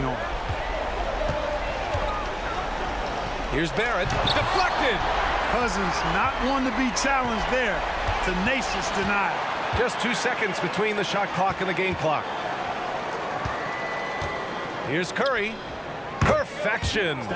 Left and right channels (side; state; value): both; identical; correlation 1.00